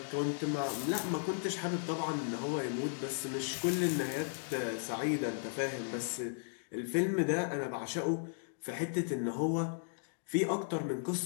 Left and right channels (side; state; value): right; silent; digital silence